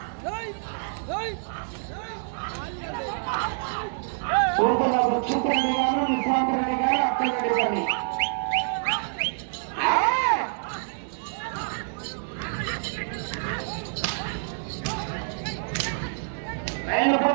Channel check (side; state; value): left; silent; 60 dB below the other